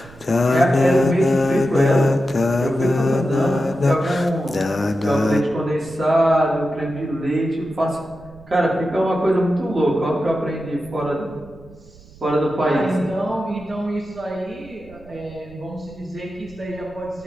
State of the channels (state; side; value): noise; right; rumble, 23 dB below the sound